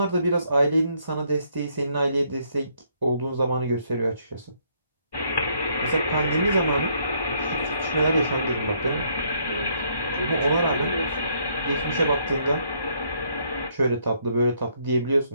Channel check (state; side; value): inverted; both; correlation -0.70